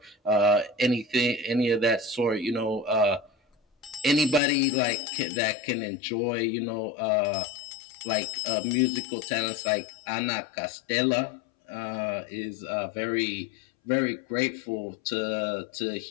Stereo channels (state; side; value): drops out; right; at 4.4 s